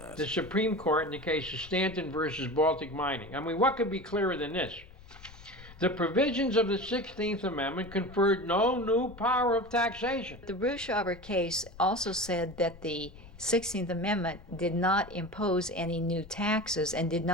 The Supreme Court in the case of Stanton versus Baltic Mining. I mean, what could be clearer than this? The provisions of the 16th Amendment conferred no new power of taxation. The Russo case also said that the 16th Amendment did not impose any new taxes and did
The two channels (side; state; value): left; noise; rumble, 20 dB below the sound